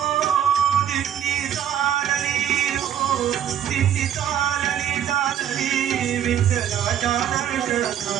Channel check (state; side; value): quieter; left; 9.9 dB